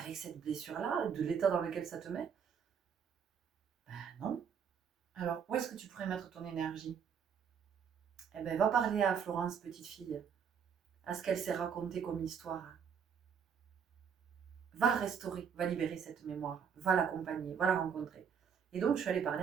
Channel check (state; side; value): quieter; left; 7.2 dB